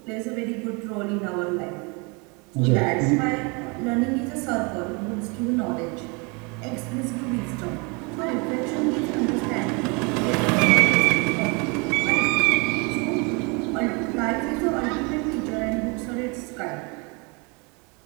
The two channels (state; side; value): quieter; left; 30.4 dB